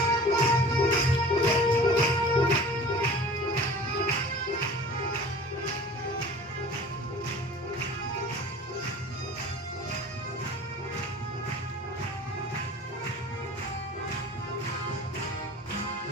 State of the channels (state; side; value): normal; both; correlation 0.43